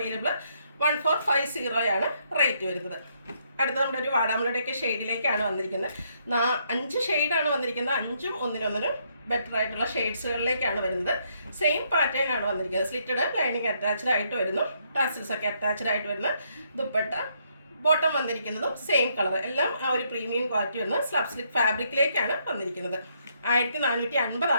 1450 ആണ് റേറ്റ് വരുന്നത്. അടുത്ത നമ്മുടെ ഒരു വാടാമുളയുടെയൊക്കെ ഷെയ്ഡിലേക്കാണ് വന്നിരിക്കുന്നത്. 5 ഷെയ്ഡാണ് വന്നിരിക്കുന്നത്. 5ഉം ഒന്നിനൊന്നിനും ബെറ്റർ ആയിട്ടുള്ള ഷെയ്ഡ്സുകളിലേക്കാണ് വരുന്നത്. സെയിം പാറ്റേൺ ആണ് വന്നിരിക്കുന്നത്. സ്ലിറ്റഡ് ലൈനിങ് അറ്റാച്ച്ഡ് ആയിട്ട് വരുന്നു. ടാസിൽസ് ഒക്കെ അറ്റാച്ച്ഡ് ആയിട്ട് വരുന്ന ദുപ്പട്ട. ബോട്ടം വന്നിരിക്കുന്നതും സെയിം കളർ. എല്ലാം ആ ഒരു പ്രീമിയം ക്വാളിറ്റി വരുന്ന സ്ലബ് സിൽക്ക് ഫാബ്രിക്കിലേക്കാണ് വന്നിരിക്കുന്നത്. 1450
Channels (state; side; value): inverted; both; correlation -0.73